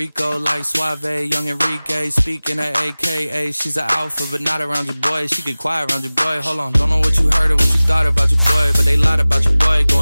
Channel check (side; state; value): both; inverted; correlation -0.99